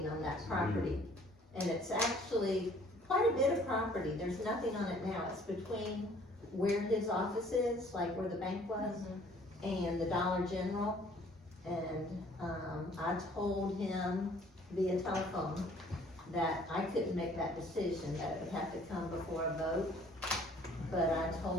on that property. And it's actually quite a bit of property, there's nothing on it now, it's between where his office is, like where the bank was, and the Dollar General. And, I told him via telephone that I couldn't make that decision, that it would have to come before a vote. But I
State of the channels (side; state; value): both; normal; correlation 0.56